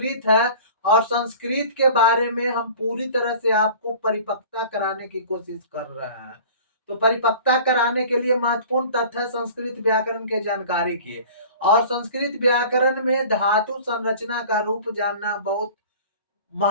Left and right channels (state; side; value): inverted; both; correlation -0.43